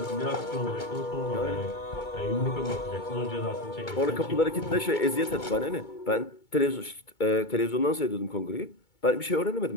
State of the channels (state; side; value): late; right; 2.2 ms